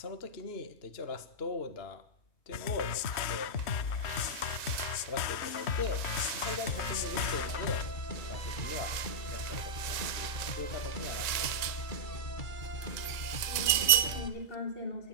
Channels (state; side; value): late; right; 2.0 ms